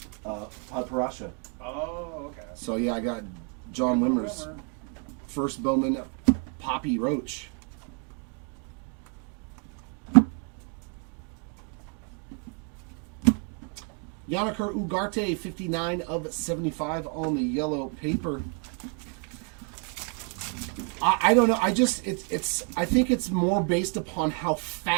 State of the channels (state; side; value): quieter; left; 38.5 dB